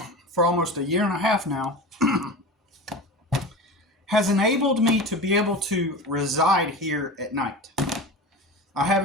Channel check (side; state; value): both; normal; correlation 0.30